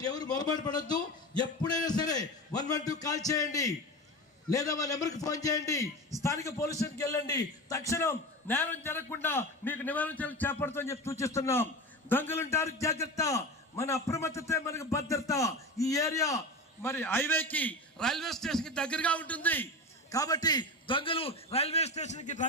ఎవరు మొరబాటు పడద్దు. ఎప్పుడైనా సరే 112 కాల్ చేయండి, లేదా మా నెంబర్కి ఫోన్ చేయండి. స్థానిక పోలీస్ స్టేషన్కి వెళ్ళండి. తక్షణం నేరం జరగకుండా మీకు నివారణ చర్యలు చేపడతామని చెప్పి సూచిస్తున్నాం. దొంగలుంటారు జాగ్రత్త, మన అప్రమత్తతే మనకు భద్రత. ఈ ఏరియా మరి హైవేకి, రైల్వే స్టేషన్కి దగ్గరగా ఉంటుంది. కాబట్టి దొంగలు రైల్వే స్టేషన్కి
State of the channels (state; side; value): normal; both; correlation 0.26